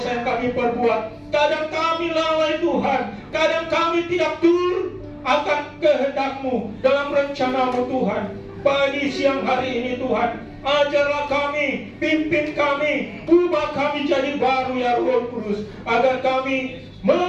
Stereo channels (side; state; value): both; identical; correlation 1.00